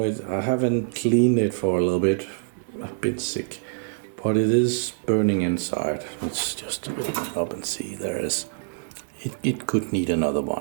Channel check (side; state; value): left; silent; digital silence